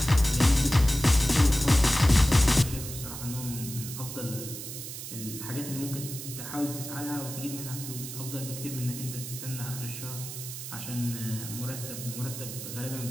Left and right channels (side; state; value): right; noise; hiss, 9 dB below the sound